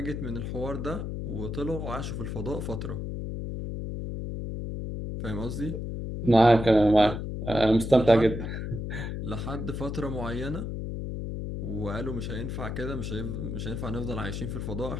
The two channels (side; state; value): left; noise; hum, 4 dB below the sound